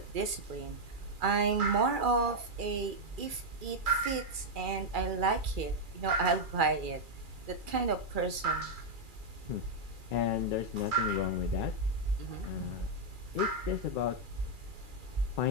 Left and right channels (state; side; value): late; left; 2.4 ms